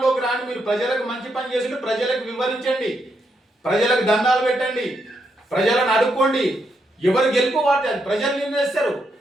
రాని, మీరు ప్రజలకు మంచి పని చేసి ప్రజలకు వివరించండి, ప్రజలకు దండాలు పెట్టండి, ప్రజలను అడుక్కోండి. ఎవరు గెలుపు వాటి అది ప్రజలు నిర్ణయిస్తారు.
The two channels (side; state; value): both; normal; correlation 0.80